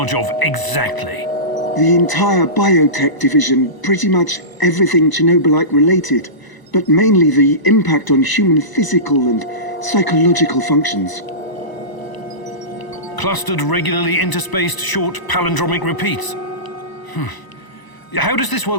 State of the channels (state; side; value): late; right; 1.0 ms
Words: of exactly? The entire biotech division, pretty much everything Chernobylite related, but mainly the impact on human physical and psychological functions. Clustered, regularly interspaced, short palindromic repeats. How does this